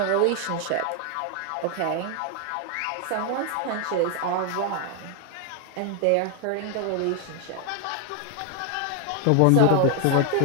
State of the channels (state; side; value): different; both; correlation 0.01